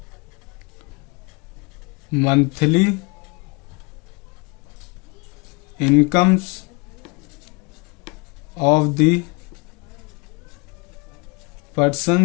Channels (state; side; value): quieter; right; 29.0 dB